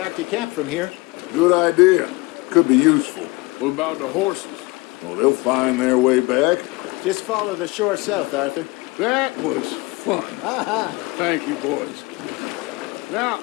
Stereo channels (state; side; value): quieter; right; 23.9 dB